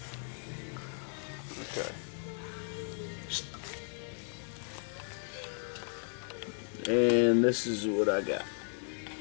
Okay. And this is what I got.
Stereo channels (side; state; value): right; silent; 54 dB below the other